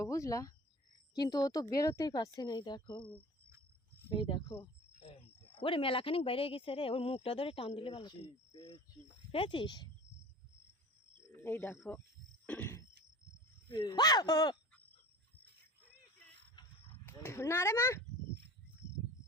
বুঝলা, কিন্তু ও তো বেরোতেই পারছে না। এই দেখো, এই দেখো, ওরে মেলাখানিক বাইরে গেছে রে, ওর মুখটা ধরে টান দিলে ভালো। পেয়েছিস? এই দেখো, না রে মা,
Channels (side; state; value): both; normal; correlation 0.40